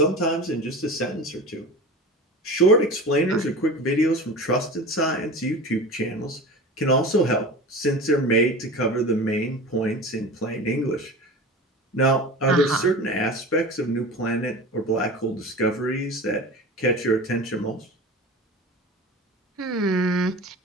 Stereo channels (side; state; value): both; normal; correlation 0.33